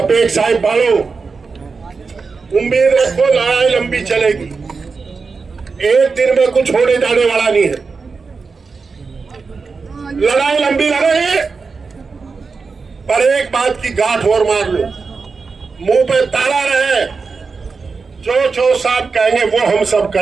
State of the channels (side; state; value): left; quieter; 4.7 dB